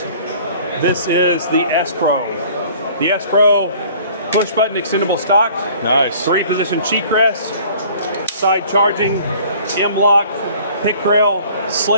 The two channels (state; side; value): inverted; both; correlation -0.51